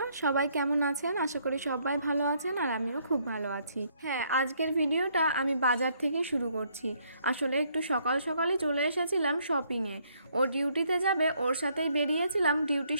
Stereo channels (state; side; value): inverted; both; correlation -0.69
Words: সবাই কেমন আছেন? আশা করি সবাই ভালো আছেন আর আমিও খুব ভালো আছি। হ্যাঁ, আজকের ভিডিওটা আমি বাজার থেকে শুরু করছি। আসলে একটু সকাল সকালই চলে এসেছিলাম শপিংয়ে। ও ডিউটিতে যাবে, ওর সাথেই বেরিয়েছিলাম, ডিউটি